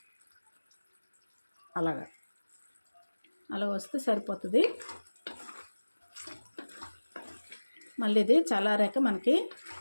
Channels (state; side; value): inverted; both; correlation -1.00